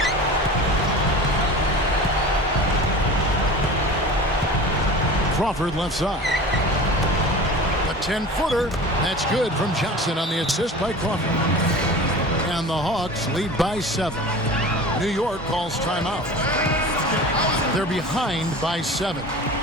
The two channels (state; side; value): normal; both; correlation 0.36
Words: Crawford left side. A 10-footer. That's good from Johnson on the assist by Crawford. And the Hawks lead by 7. New York calls timeout. They're behind by 7.